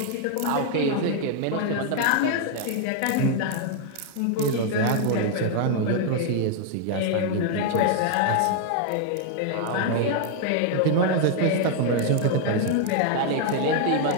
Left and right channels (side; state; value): both; different; correlation 0.00